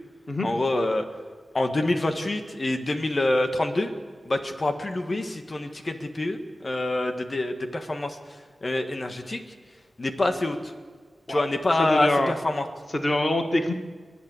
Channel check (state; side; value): normal; both; correlation 0.95